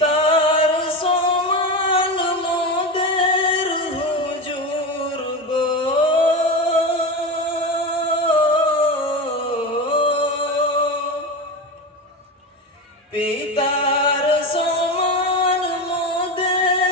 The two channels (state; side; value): normal; both; correlation 0.21